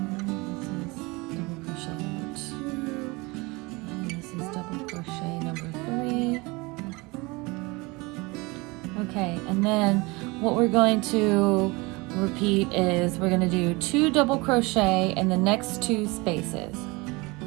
this is double crochet number 2, and this is double crochet number 3. Okay, and then what we're going to repeat is we're going to do 2 double crochet in the next 2 spaces.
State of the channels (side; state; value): left; quieter; 25.0 dB